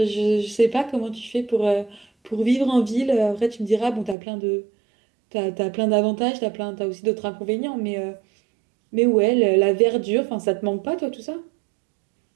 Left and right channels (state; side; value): drops out; left; at 4.2 s